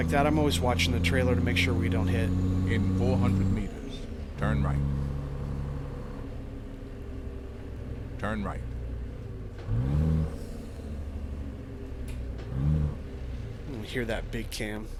that. I'm always watching the trailer to make sure we don't hit. In 400 meters, turn right. Turn right. You hear that big cam.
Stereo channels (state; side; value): identical; both; correlation 1.00